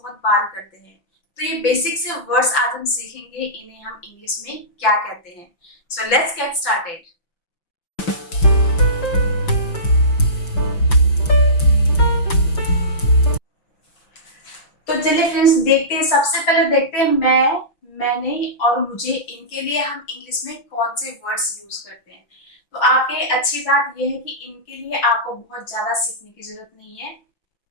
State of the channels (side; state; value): right; late; 5.9 ms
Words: बार करते हैं। तो ये बेसिक से वर्ड्स आज हम सीखेंगे, इन्हें हम इंग्लिश में क्या कहते हैं। So let's get started. तो चलिए फ्रेंड्स, देखते हैं। सबसे पहले देखते हैं मैंने और मुझे, इनके लिए हम इंग्लिश में कौन से वर्ड्स यूज करते हैं। तो आपके अच्छी बात यह है कि इनके लिए आपको बहुत ज्यादा सीखने की जरूरत नहीं है।